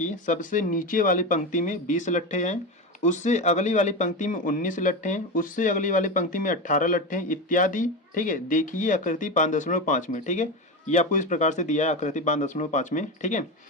सबसे नीचे वाली पंक्ति में 20 लट्ठे हैं, उससे अगली वाली पंक्ति में 19 लट्ठे हैं, उससे अगली वाली पंक्ति में 18 लट्ठे हैं इत्यादि, ठीक है। देखिए आकृति 5.5 में, ठीक है, ये आपको इस प्रकार से दिया है आकृति 5.5 में, ठीक है।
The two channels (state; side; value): normal; both; correlation 0.19